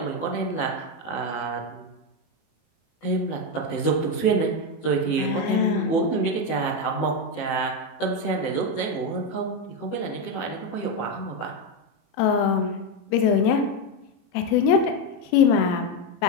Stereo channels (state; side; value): late; right; 18 ms